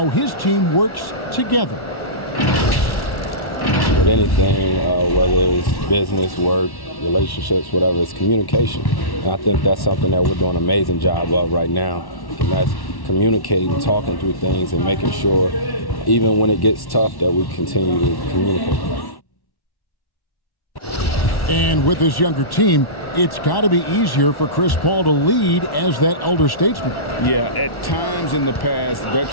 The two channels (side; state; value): right; late; 1.1 ms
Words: his team works together. With anything, whether it's business, work, relationships, whatever, it's communication. And I think that's something that we're doing an amazing job of right now. And that's communicating, talking through things, and making sure, even when it gets tough, that we continue to communicate. And with this younger team, it's got to be easier for Chris Paul to lead as that elder statesman. Yeah, at times in the past,